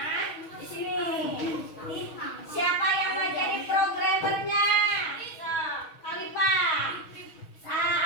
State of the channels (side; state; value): right; late; 6.3 ms